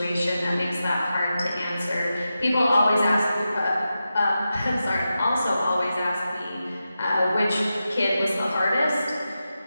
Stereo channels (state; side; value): inverted; both; correlation -0.91